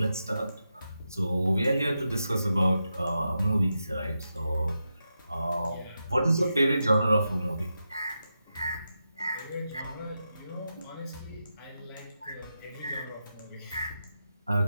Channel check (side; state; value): both; inverted; correlation -0.88